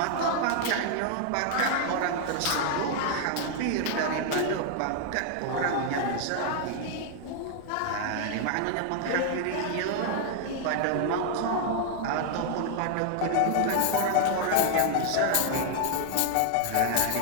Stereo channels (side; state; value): both; different; correlation 0.00